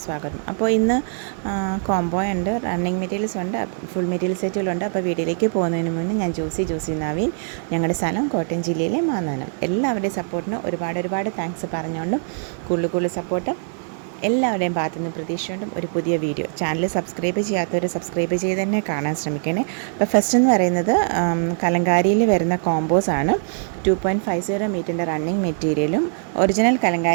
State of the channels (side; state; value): left; silent; 60 dB below the other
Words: സ്വാഗതം. അപ്പോൾ ഇന്ന് കോംബോ ഉണ്ട്, റണ്ണിങ് മെറ്റീരിയൽസ് ഉണ്ട്, ഫുൾ മെറ്റീരിയൽ സെറ്റുകളുണ്ട്. അപ്പോൾ വീഡിയോയിലേക്ക് പോകുന്നതിന് മുന്നേ ഞാൻ ജോസി നവീൻ, ഞങ്ങളുടെ സ്ഥലം കോട്ടയം ജില്ലയിലെ മാന്നാനം. എല്ലാവരുടെയും സപ്പോർട്ടിന് ഒരുപാട് താങ്ക്സ് പറഞ്ഞുകൊണ്ടും കൂടുതൽ സപ്പോർട്ട് എല്ലാവരുടെയും ഭാഗത്തുനിന്ന് പ്രതീക്ഷിച്ചുകൊണ്ടും ഒരു പുതിയ വീഡിയോ. ചാനൽ സബ്സ്ക്രൈബ് ചെയ്യാത്തവർ സബ്സ്ക്രൈബ് ചെയ്ത് തന്നെ കാണാൻ ശ്രമിക്കണേ. അപ്പോൾ ഫസ്റ്റ് എന്ന് പറയുന്നത് കലങ്കാരിയിൽ വരുന്ന കോമ്പോസ് ആണ്. 2.50 മീറ്ററിൻ്റെ റണ്ണിങ് മെറ്റീരിയലും ഒറിജിനൽ